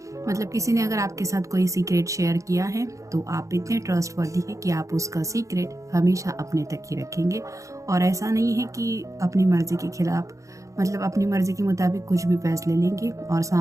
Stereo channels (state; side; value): late; left; 0.15 ms